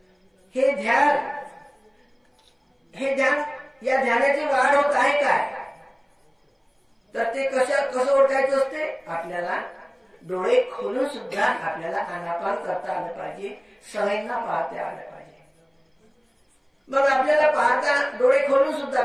हे ध्यान या ध्यानाची वाढ होत आहे काय? तर ते कसं ओळखायचं असते? आपल्याला डोळे खोलून सुद्धा आपल्याला आनापान करता आलं पाहिजे, सवयींना पाहता आलं पाहिजे. मग आपल्याला पाहता डोळे खोलून सुद्धा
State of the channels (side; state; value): both; identical; correlation 1.00